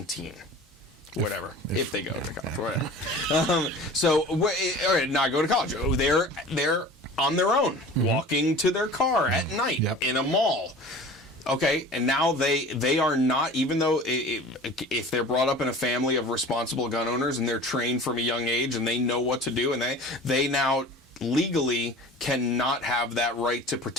Whatever, if they go to college, whatever. Not go to college. They're on their own, walking to their car at night in a mall. Okay, and now they are not, even though if they're brought up in a family of responsible gun owners and they're trained from a young age and they know what to do, and they now legally cannot have that right to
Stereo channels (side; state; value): both; normal; correlation 0.40